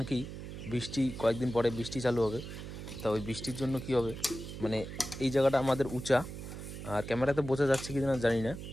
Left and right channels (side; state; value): right; noise; hum, 9 dB below the sound